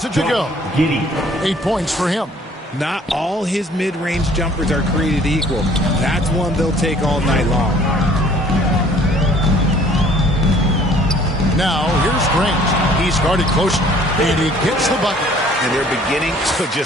it to go. 8 points for him. Not all his mid-range jumpers are created equal. That's one they'll take all night long. Now, here's Grant. He's guarded closely, and he gets the bucket. And they're beginning to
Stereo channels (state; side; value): normal; both; correlation 0.55